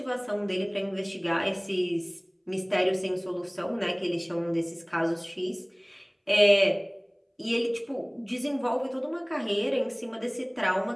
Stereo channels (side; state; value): both; identical; correlation 1.00